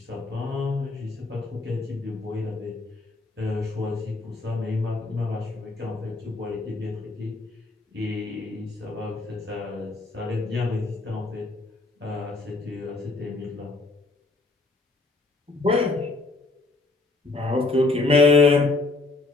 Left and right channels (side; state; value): right; quieter; 3.5 dB